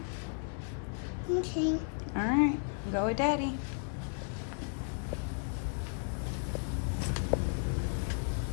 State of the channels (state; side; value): silent; right; 55 dB below the other